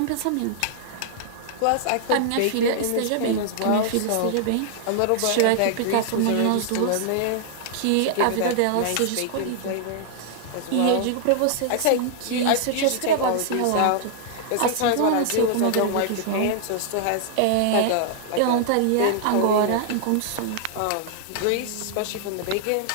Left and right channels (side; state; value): both; different; correlation -0.01